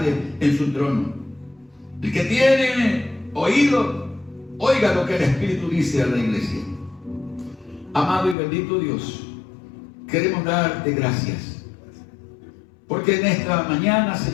en su trono. El que tiene oído, oiga lo que el Espíritu dice a la iglesia. Amado y bendito Dios, queremos darte gracias, porque en esta mañana,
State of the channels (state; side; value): drops out; right; at 8.3 s